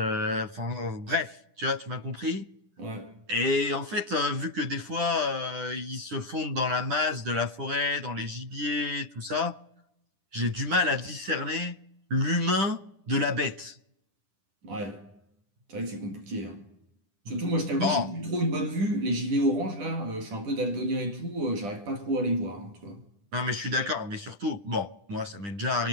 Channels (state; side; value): late; left; 10 ms